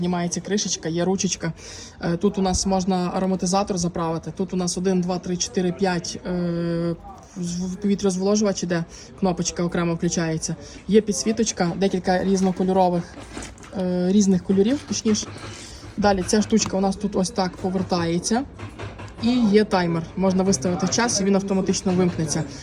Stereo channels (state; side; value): identical; both; correlation 1.00